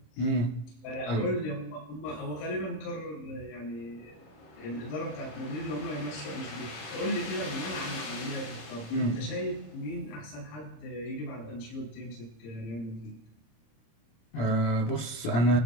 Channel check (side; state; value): right; late; 26 ms